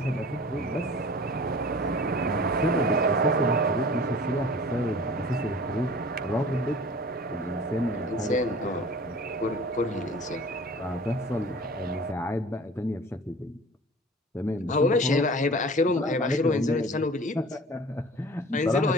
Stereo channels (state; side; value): normal; both; correlation 0.44